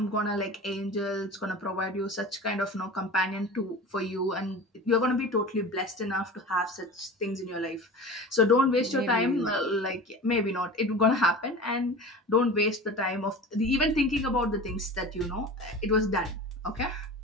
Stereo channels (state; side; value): normal; both; correlation 0.35